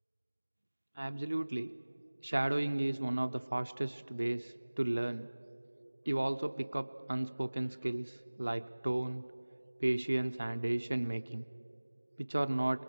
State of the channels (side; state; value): both; inverted; correlation -1.00